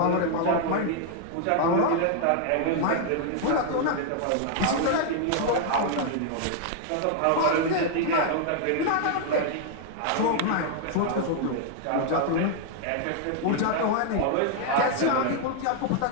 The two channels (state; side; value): different; both; correlation 0.00